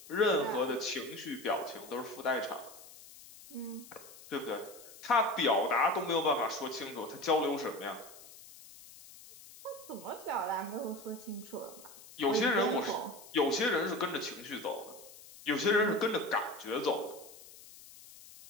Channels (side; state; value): left; noise; hiss, 19 dB below the sound